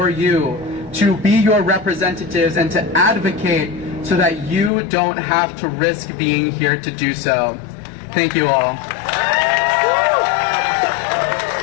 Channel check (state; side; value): drops out; right; at 4.7 s